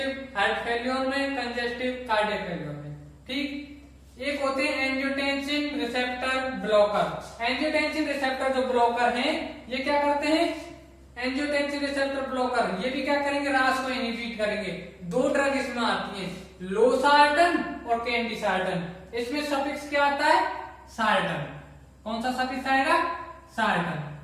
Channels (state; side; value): identical; both; correlation 1.00